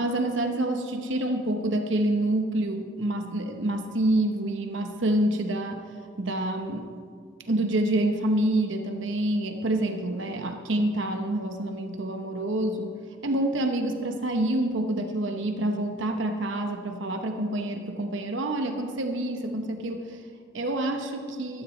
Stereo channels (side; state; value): both; normal; correlation 0.56